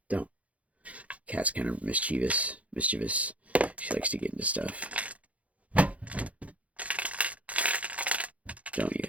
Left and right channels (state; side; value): late; left; 0.067 ms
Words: don't. Cat's kind of mischievous. She likes to get into stuff.